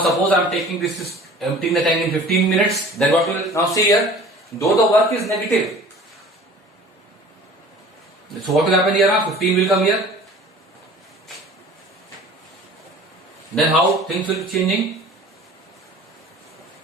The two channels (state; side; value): normal; both; correlation 0.45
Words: suppose I am taking this is emptying the tank in 15 minutes, then what will, now see here, though the work is negative. So what will happen here now? 15 will come here. Then how things will be changing?